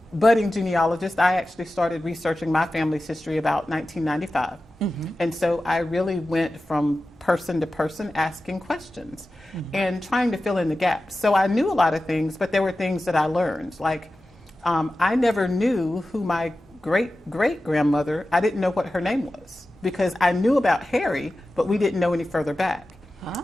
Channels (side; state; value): both; normal; correlation 0.94